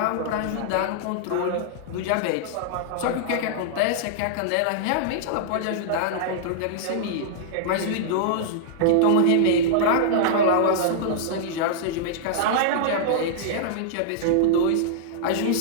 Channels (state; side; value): different; both; correlation -0.02